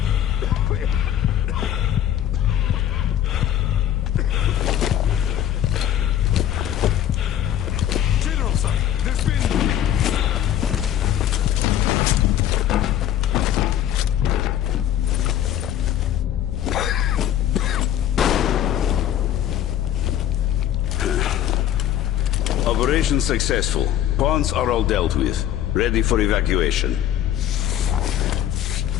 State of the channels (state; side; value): quieter; right; 11.2 dB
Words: General, sir, there's been... Operation successful. Pawns are all dealt with. Ready for evacuation.